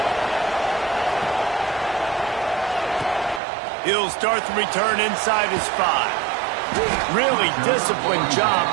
He'll start the return inside his 5. Really disciplined job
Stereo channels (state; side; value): drops out; left; at 3.4 s